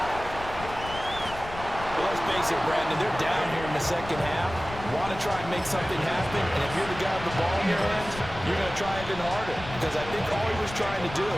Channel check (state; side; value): noise; left; rumble, 12 dB below the sound